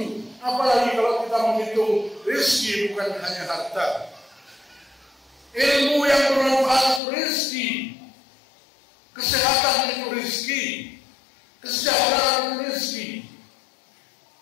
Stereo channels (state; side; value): drops out; right; at 7.0 s